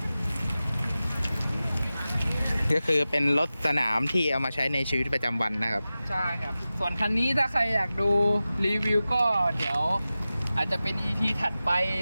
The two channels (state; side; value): inverted; both; correlation -0.95